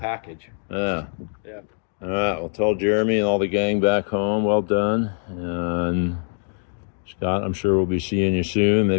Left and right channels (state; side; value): silent; right; digital silence